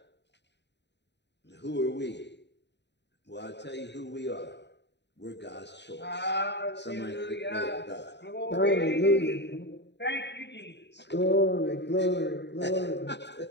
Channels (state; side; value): late; right; 0.50 ms